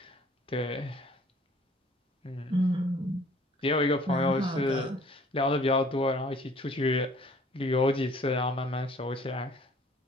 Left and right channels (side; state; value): both; normal; correlation 0.55